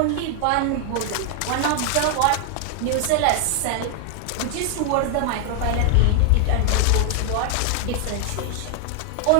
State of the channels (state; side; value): different; both; correlation 0.00